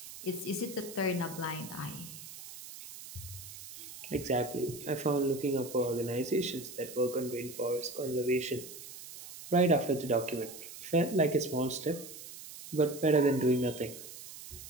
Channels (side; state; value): right; noise; hiss, 13 dB below the sound